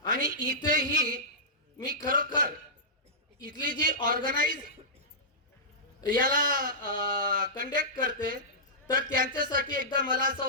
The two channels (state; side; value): normal; both; correlation -0.16